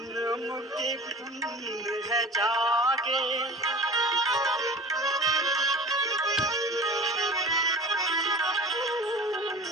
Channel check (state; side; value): normal; both; correlation 0.39